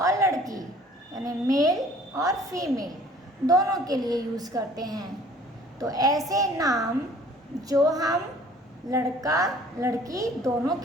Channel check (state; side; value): normal; both; correlation 0.53